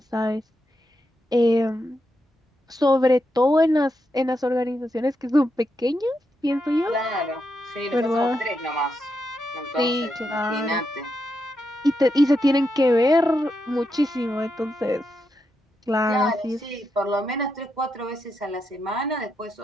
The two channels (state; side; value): normal; both; correlation 0.84